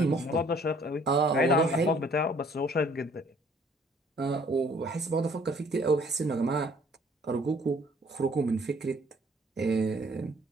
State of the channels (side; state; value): both; normal; correlation 0.59